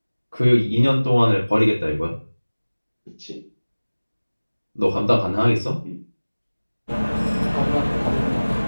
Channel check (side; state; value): both; inverted; correlation -1.00